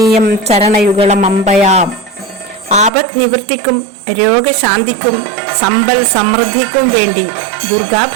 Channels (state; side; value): drops out; left; at 2.9 s